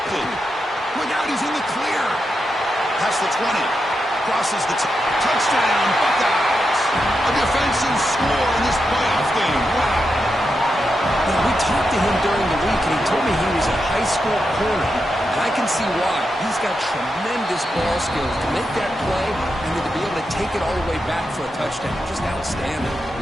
Look out, he's in the clear. Past the 20. Crosses the touchdown, Buckeyes. A defensive score in this playoff game. Wow. Now, we talked to him during the week, and he told me he was a high school corner. And I can see why. He's got tremendous ball skills to make that play and then to be able to take it all the way back for a touchdown. Just outstanding.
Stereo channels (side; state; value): both; normal; correlation 0.86